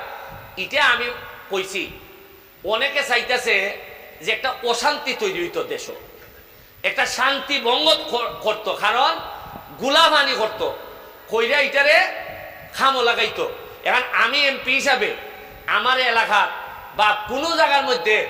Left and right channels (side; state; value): both; identical; correlation 1.00